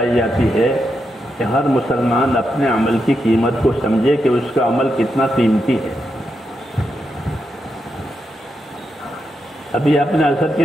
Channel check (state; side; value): normal; both; correlation 0.85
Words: جاتی ہے کہ ہر مسلمان اپنے عمل کی قیمت کو سمجھے کہ اس کا عمل کتنا قیمتی ہے۔ ابھی آپ نے عصر کی